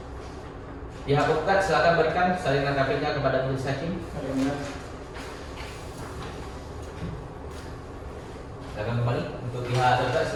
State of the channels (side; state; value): both; identical; correlation 1.00